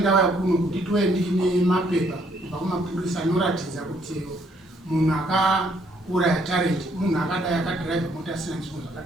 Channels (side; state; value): both; normal; correlation 0.68